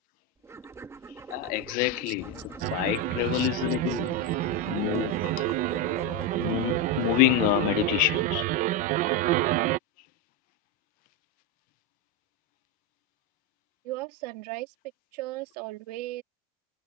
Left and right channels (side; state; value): both; normal; correlation 0.09